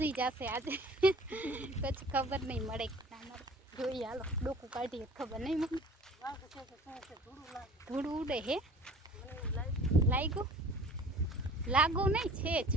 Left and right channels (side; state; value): both; normal; correlation 0.47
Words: જશે આજે. પછી ખબર નહીં મળે કે ના મળે, જોઈએ. હાલો ડોકું કાઢીએ, ખબર નહીં મમ્મી. ધૂળ ઉડે હે? લાગુ નહીં છે જ